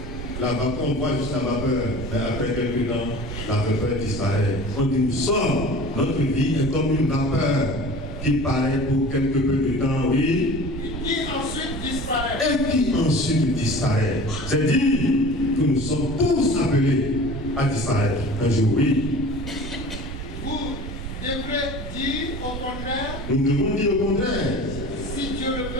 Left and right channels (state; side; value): noise; right; rumble, 8 dB below the sound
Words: La vapeur, on voit juste la vapeur. Mais après quelques temps, la vapeur disparaît. On dit, nous sommes, notre vie est comme une vapeur qui paraît pour quelque peu de temps, oui. Et qui ensuite disparaît. Et qui ensuite disparaît. C'est dire que nous sommes tous appelés à disparaître un jour, oui. Vous devrez dire au contraire. Nous devons dire au contraire. Si Dieu le